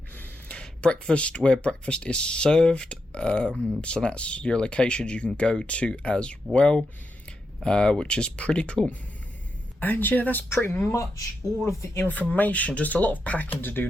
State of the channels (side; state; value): both; normal; correlation 0.85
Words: Breakfast, where breakfast is served, so that's your locations you can go to as well, which is pretty cool. And yeah, that's pretty much all of the information. Just a lot of packing to do